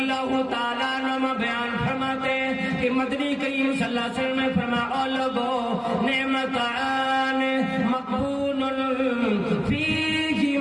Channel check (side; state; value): both; identical; correlation 1.00